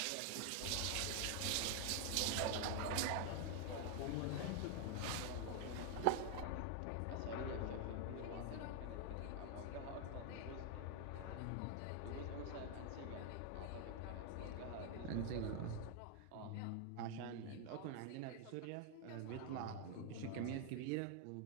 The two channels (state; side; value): different; both; correlation 0.00